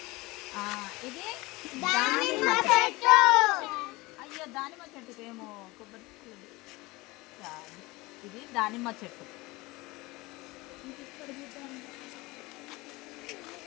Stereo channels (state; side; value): quieter; right; 22.1 dB